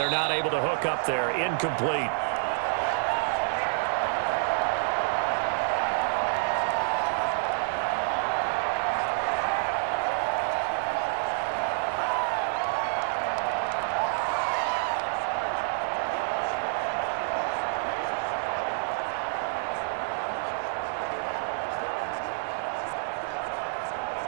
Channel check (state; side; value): silent; left; digital silence